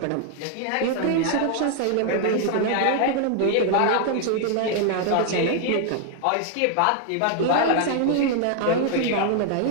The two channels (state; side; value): different; both; correlation 0.00